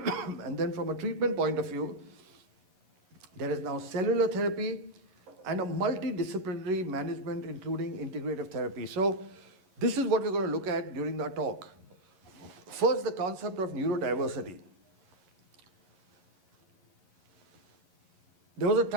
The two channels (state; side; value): late; left; 11 ms